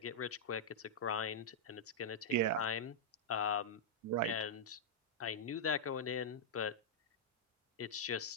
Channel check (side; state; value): both; normal; correlation -0.08